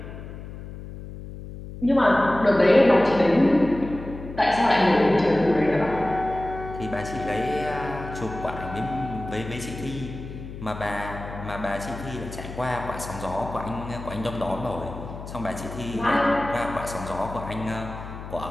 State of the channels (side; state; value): left; noise; hum, 11 dB below the sound